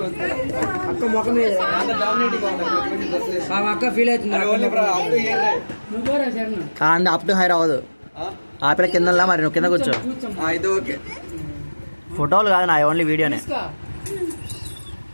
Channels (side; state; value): both; inverted; correlation -1.00